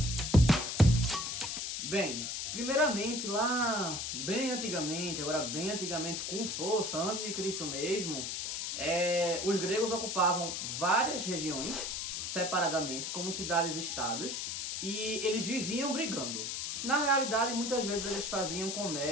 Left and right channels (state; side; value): noise; left; hiss, 3 dB below the sound